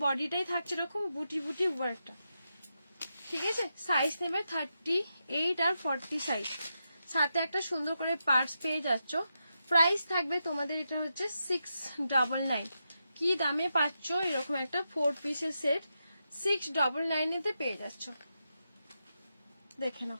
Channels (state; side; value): inverted; both; correlation -0.86